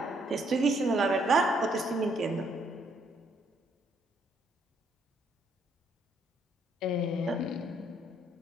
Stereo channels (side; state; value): both; normal; correlation 0.69